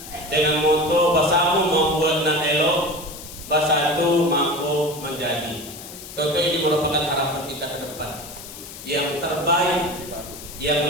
dengan moto bersama membuat nan elok, bersatu mampu menjadi. Tentu ini merupakan harapan kita ke depan yang terbaik, yang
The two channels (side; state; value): left; noise; hiss, 14 dB below the sound